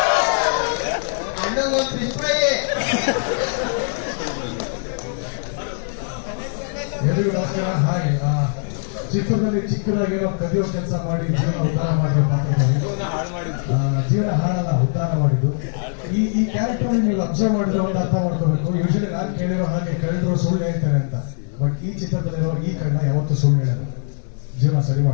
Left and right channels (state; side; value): silent; right; 63 dB below the other